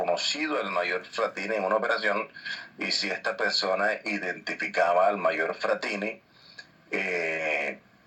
el mayor Fratini en una operación, y si esta persona identificaba al mayor Fratini,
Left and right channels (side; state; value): both; identical; correlation 1.00